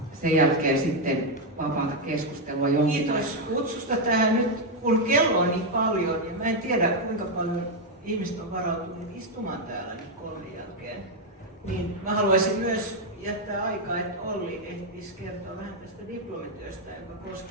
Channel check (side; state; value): both; normal; correlation 0.02